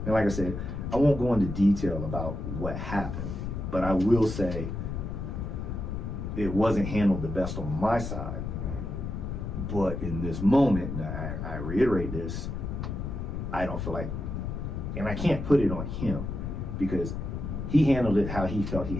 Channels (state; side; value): noise; left; rumble, 5 dB below the sound